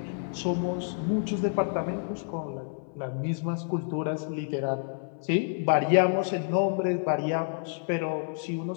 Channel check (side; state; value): right; silent; 59 dB below the other